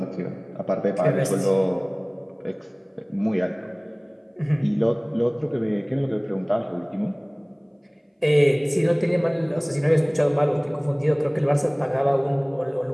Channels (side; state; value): both; identical; correlation 1.00